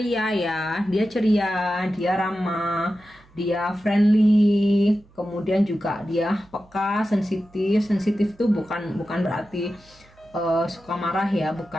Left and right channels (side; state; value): right; noise; hum, 28 dB below the sound